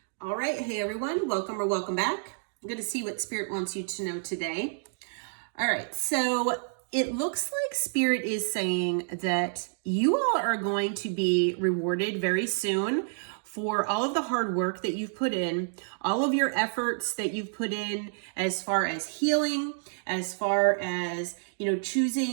All right. Hey, everyone. Welcome or welcome back. I'm going to see what Spirit wants you to know today. All right. So it looks like Spirit is saying that you all are going to be rewarded very soon for all of the hard work that you've put in, all of your efforts that you've put in as far as healing, as far as,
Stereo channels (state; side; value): silent; left; digital silence